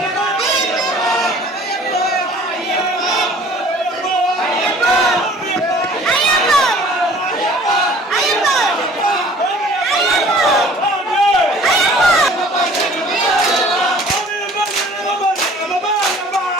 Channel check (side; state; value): both; normal; correlation 0.51